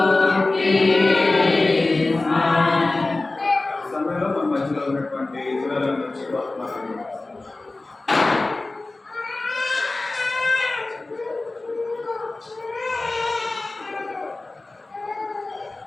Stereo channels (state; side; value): quieter; right; 3.1 dB